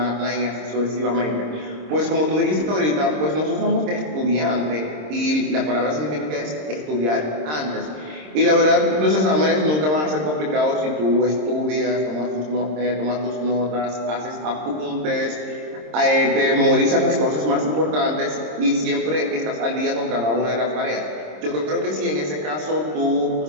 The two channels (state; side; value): late; left; 26 ms